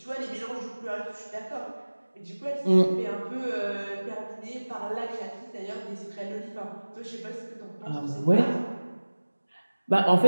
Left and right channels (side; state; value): both; inverted; correlation -1.00